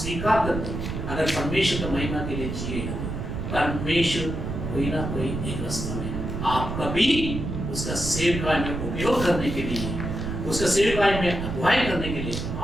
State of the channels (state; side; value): noise; right; rumble, 4 dB below the sound